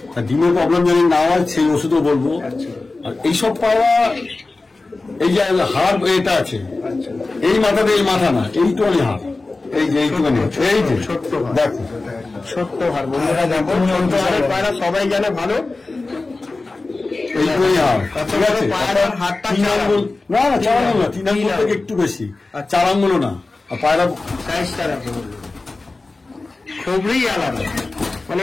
তা ডিমের প্রবলেম যদি না হয় সেই ওষুধও বলবো। আর এইসব পায়রা এই যে হাড় এটা আছে, এই মাথাতে এই মাথা না, এইটুখানি হাড়, এই যে এইটুখানি, এই যে দেখো ছোট্ট হার বন্ধুরা, দেখো ছোট্ট হারের পায়রা সবাই জানে ভালো। এইটুখানি হাড়, ঠিক আছে? পায়রার হাতটা 3 আঙ্গুল না, 4 আঙ্গুল না, 3 আঙ্গুল থেকে একটু বেশি, 4 আঙ্গুলও না। আর পায়রা সাইজটা দেখো, খুবই আলাদা, মানে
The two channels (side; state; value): right; quieter; 3.4 dB